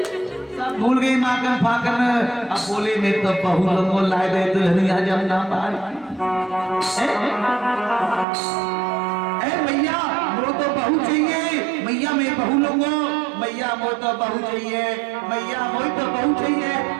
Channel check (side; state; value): left; drops out; at 8.2 s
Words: सब भूल गए माखन फाकन। अब बोले मैं तो बहू लोगों लाए दे दुल्हनिया जब ना पाई। मैया वो तो बहू चाहिए, मैया मैं बहू लूंगा, मैया वो तो बहू चाहिए, मैया वो तो बहू चाहिए,